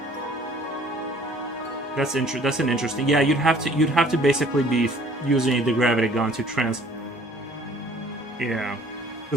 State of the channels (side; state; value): both; normal; correlation 0.55